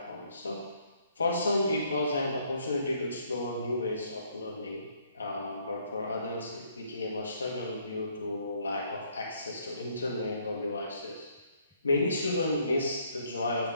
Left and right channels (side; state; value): both; inverted; correlation -0.67